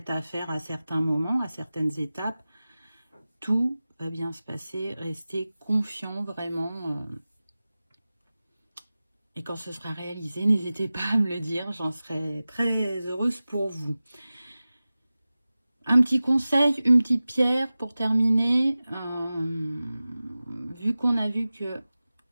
à faire à certains moments, à certaines étapes, tout va bien se passer, restez confiant vraiment. Et quand ce sera réalisé, n'hésitez pas à me le dire, j'en serai très heureuse pour vous. Un petit conseil, une petite pierre pour terminer. Vu qu'on a vu que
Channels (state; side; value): inverted; both; correlation -0.96